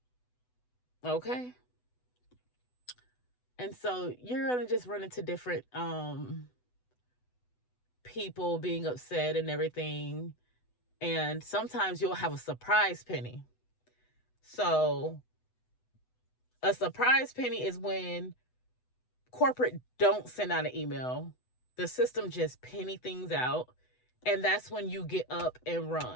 Okay. And so you're gonna just run into different people being upset and everything. And sometimes you'll have a surprise penny. So a surprise penny is when corporate don't send out an email. The system just penny things out. And that's when you get up and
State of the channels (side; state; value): right; late; 8.0 ms